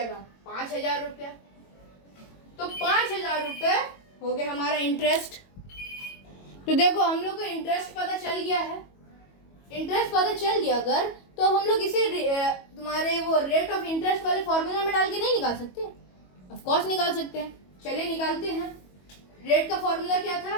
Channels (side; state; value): right; late; 22 ms